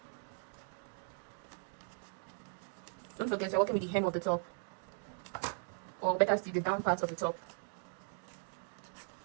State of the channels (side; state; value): left; silent; 52 dB below the other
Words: Don't forget, you're working with the hem of the top, or better still, the down part of the top.